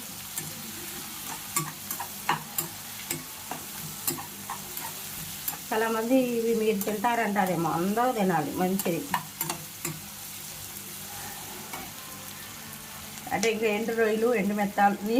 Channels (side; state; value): both; identical; correlation 1.00